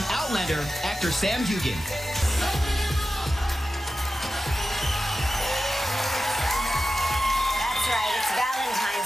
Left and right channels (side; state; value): both; normal; correlation 0.93